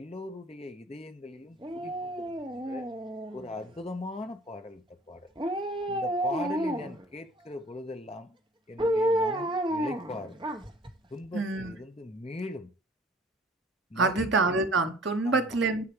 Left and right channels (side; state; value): both; normal; correlation 0.50